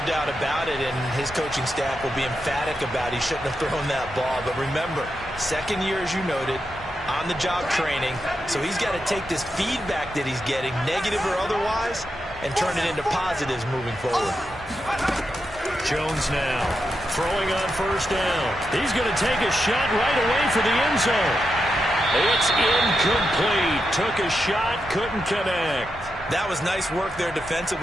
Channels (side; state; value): both; normal; correlation 0.86